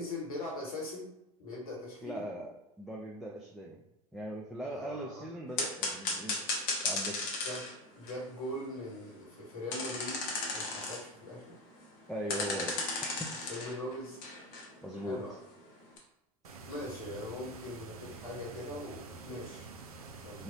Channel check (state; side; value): normal; both; correlation 0.22